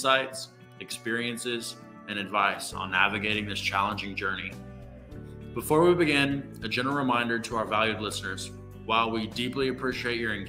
experiences, and advice on navigating this challenging journey. Before we begin, a general reminder to our valued listeners. While we deeply appreciate your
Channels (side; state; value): both; identical; correlation 1.00